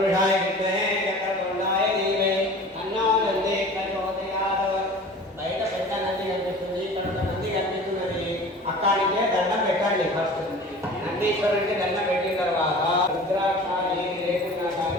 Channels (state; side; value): normal; both; correlation 0.41